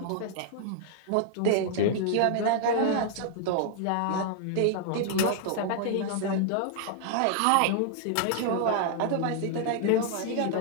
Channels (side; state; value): both; different; correlation 0.00